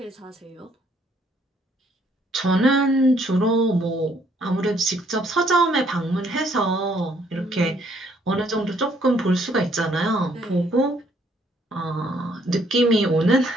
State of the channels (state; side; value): normal; both; correlation 0.66